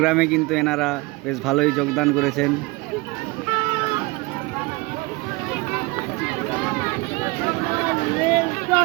কিন্তু এনারা বেশ ভালোই যোগদান করেছেন।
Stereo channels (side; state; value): left; quieter; 24.4 dB